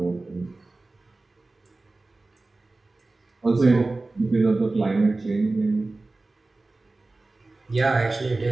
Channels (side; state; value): left; quieter; 3.2 dB